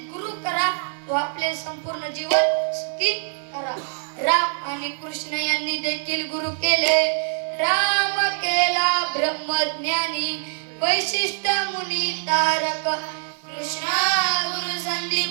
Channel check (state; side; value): silent; left; digital silence